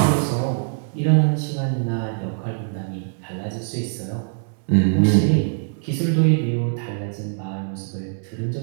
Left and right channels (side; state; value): left; silent; digital silence